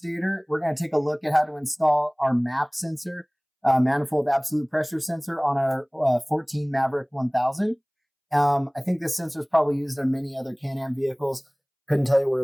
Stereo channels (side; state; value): both; identical; correlation 1.00